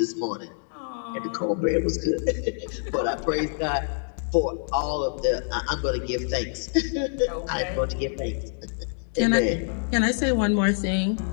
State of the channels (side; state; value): right; silent; digital silence